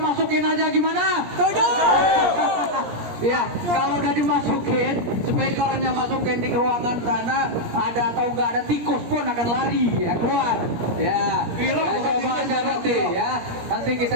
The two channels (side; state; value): left; late; 17 ms